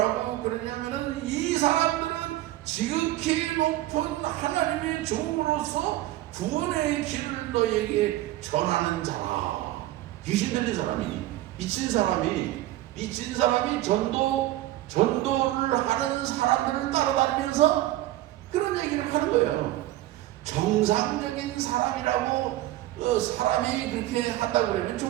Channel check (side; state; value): left; quieter; 15.5 dB